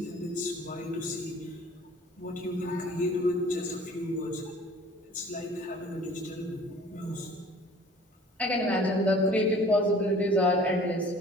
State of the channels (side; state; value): both; normal; correlation 0.49